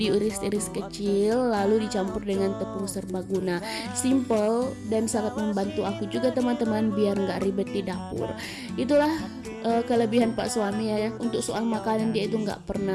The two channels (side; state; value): both; identical; correlation 1.00